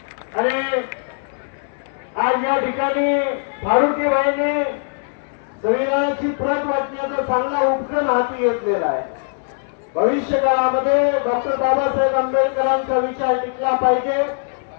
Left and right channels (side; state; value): right; silent; 64 dB below the other